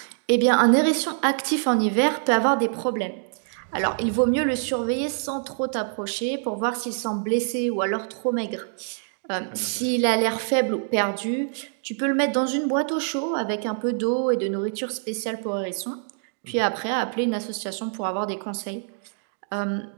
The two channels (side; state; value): left; silent; digital silence